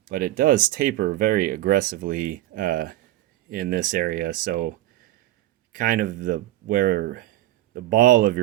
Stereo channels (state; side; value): quieter; left; 15.2 dB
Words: but it does taper very aggressively in this area, so kind of where the ball of